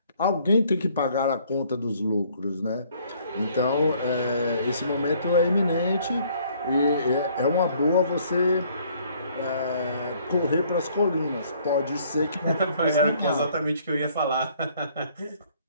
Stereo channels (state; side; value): inverted; both; correlation -0.61